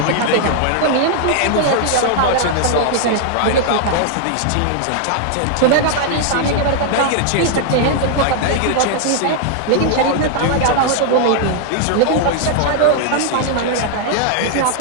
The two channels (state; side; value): different; both; correlation 0.00